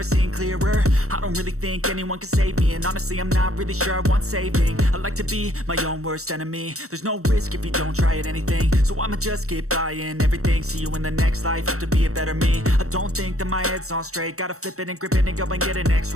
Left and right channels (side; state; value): left; late; 0.64 ms